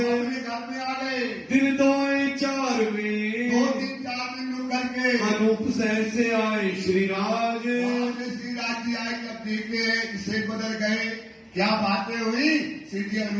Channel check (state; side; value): identical; both; correlation 1.00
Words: घर में आ गए। दिन दोए जाओगे। अनूप शहर से आए श्री राज। वहां से श्री राज जी आए, जब देखे शेख बदल गए, क्या बातें हुई, श्री जी